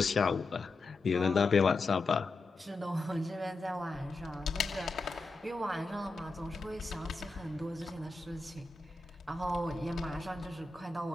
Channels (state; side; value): quieter; right; 3.5 dB